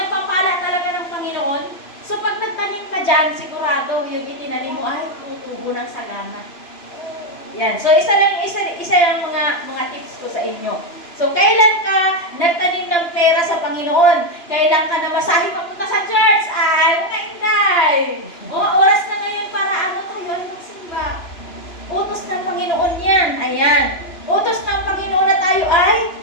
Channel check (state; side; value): late; right; 2.9 ms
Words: talaga ng Panginoon. So, pag nagtanim ka dyan, sigurado yung itinanim mo ay tutubo ng sagana. Yan. So, isa yung mga tips ko sa inyo. So, kailan ka nagtanim ng pera sa Panginoon? Kailan ka namasahe papunta sa church? Ay, mga inday! Oras na ngayon para ano tayo ay magsimba. Utos ng Panginoon yan. Ayan. Utos ng Panginoon na tayo ay